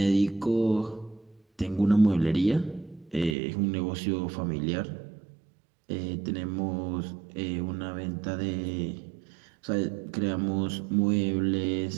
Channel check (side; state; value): left; drops out; at 3.4 s